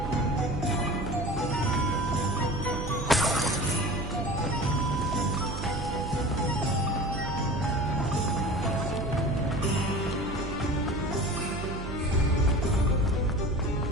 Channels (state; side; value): noise; right; hum, 7 dB below the sound